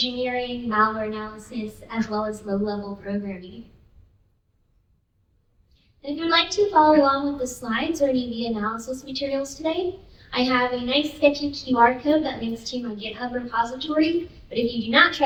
malware analysis, as well as low-level programming. And if you'd like to follow along with the slides or any of the analysis materials today, I have a nice sketchy QR code that links to my GitHub repository. But if you do not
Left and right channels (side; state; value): both; identical; correlation 1.00